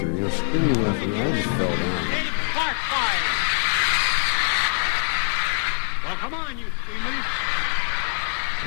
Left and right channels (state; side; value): silent; right; digital silence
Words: screaming laughter, and I just fell down. Well, come on, you screamers.